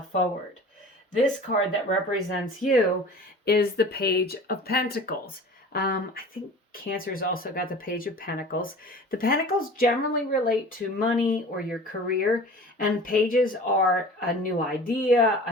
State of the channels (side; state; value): both; normal; correlation 0.41